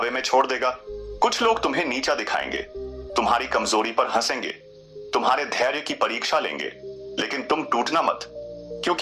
में छोड़ देगा। कुछ लोग तुम्हें नीचा दिखाएंगे, तुम्हारी कमजोरी पर हंसेंगे, तुम्हारे धैर्य की परीक्षा लेंगे, लेकिन तुम टूटना मत,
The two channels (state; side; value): identical; both; correlation 1.00